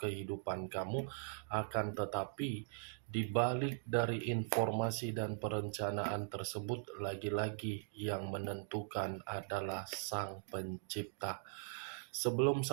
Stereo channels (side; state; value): left; silent; digital silence